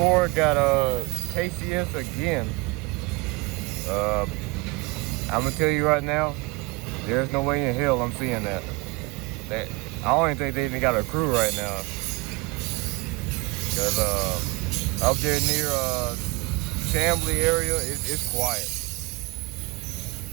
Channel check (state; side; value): quieter; left; 24.7 dB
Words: got a KCS again. I'm gonna tell you right now, there's no way in hell I'm seeing that. I don't even think they even got a crew right now. Cause up there near Chambly area, it's quiet.